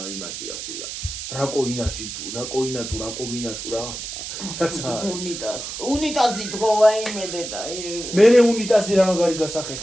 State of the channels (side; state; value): right; noise; hiss, 8 dB below the sound